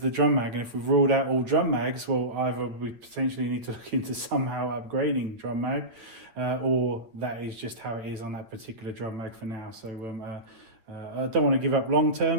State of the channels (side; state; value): left; late; 8.5 ms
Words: drum mag, and if we've ruled out all drum mags, well, either we potentially need to look into somehow upgrading drum mag, or that is just how it is on that particular drum mag for now. So I don't want to give up long